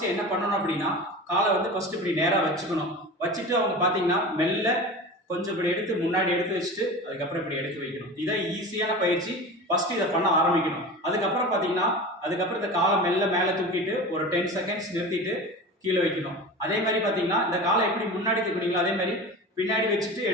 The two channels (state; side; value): normal; both; correlation 0.32